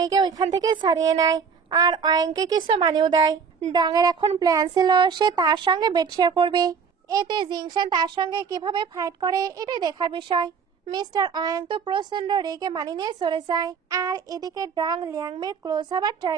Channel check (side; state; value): left; quieter; 6.1 dB